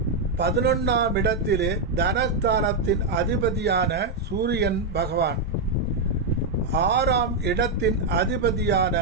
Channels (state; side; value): quieter; left; 3.4 dB